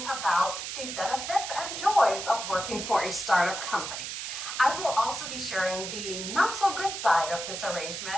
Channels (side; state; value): right; noise; hiss, 6 dB below the sound